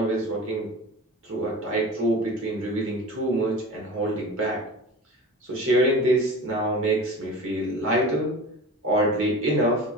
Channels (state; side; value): normal; both; correlation 0.35